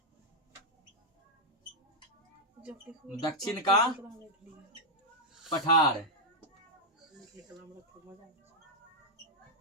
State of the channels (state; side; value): normal; both; correlation -0.03